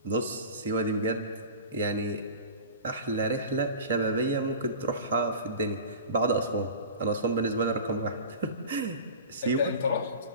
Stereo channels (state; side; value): inverted; both; correlation -0.35